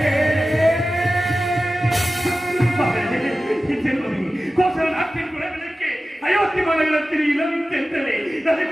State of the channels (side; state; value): both; normal; correlation 0.95